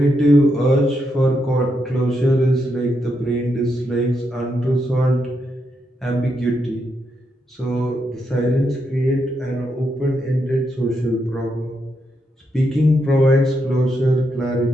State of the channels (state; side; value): normal; both; correlation 0.81